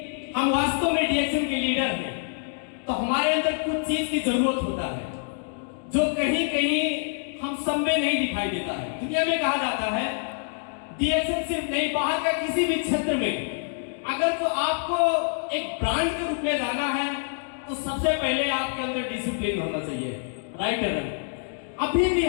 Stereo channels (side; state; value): right; silent; digital silence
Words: हम वास्तव में डीएक्सएन के लीडर हैं तो हमारे अंदर कुछ चीज की जरूरत होता है जो कहीं कहीं हम सब में नहीं दिखाई देता है। दुनिया में कहा जाता है डीएक्सएन सिर्फ नहीं, बाहर का किसी भी क्षेत्र में अगर तो आपको एक ब्रांड के रूप में जाना है तो सबसे पहले आपके अंदर डिसिप्लिन होना चाहिए, राइट है ना? अभी भी